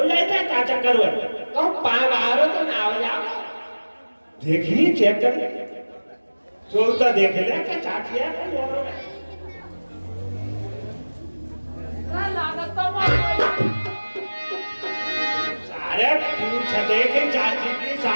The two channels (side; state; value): both; inverted; correlation -1.00